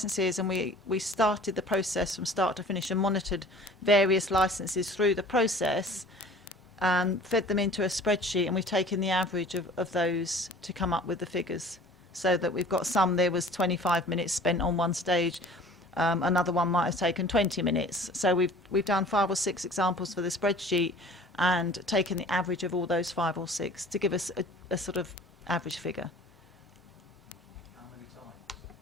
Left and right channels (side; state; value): both; normal; correlation 0.47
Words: and we started the process from start to finish and monitored various licences through the process and fed them into a spreadsheet, and we've taken the average of those to come up with the figures, so that we've got some. There was 25 minutes spent on one stage, another one might have taken 20 minutes. So we've done 5 or 6 examples for the spreadsheet and taken the average of all those 5 or 6 to give us a sort of average figure.